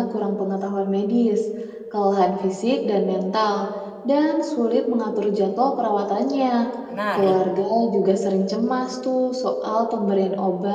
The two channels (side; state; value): both; identical; correlation 1.00